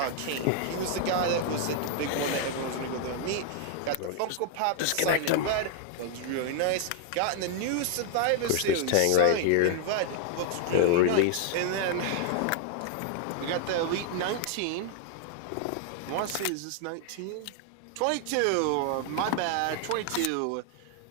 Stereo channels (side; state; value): both; different; correlation 0.00